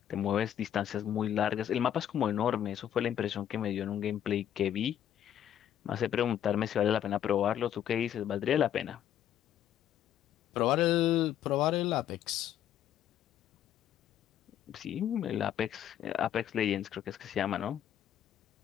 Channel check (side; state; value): right; quieter; 10.5 dB